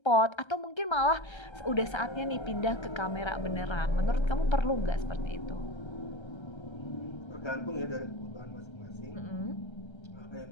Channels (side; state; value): right; late; 1.3 ms